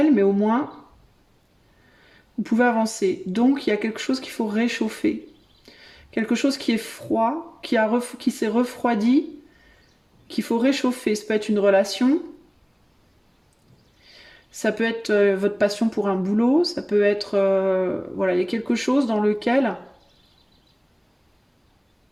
mais au moins vous pouvez avancer. Donc il y a quelque chose qu'il faut réchauffer. Quelque chose qui est froid, qui s'est refroidi, qu'il faut réchauffer. Ça peut être une relation, ça peut être votre passion pour un boulot, ça peut être... voilà, il y a quelque chose dans lequel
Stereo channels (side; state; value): both; identical; correlation 1.00